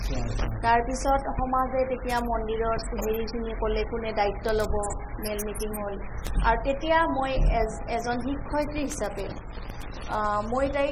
তাৰপিছত সমাজে তেতিয়া মন্দিৰত হেৰিখিনি ক'লে কোনে দায়িত্ব ল'ব মেল মিটিং হ'ল আৰু তেতিয়া মই এজন শিক্ষয়িত্ৰী হিচাপে মই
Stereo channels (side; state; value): both; identical; correlation 1.00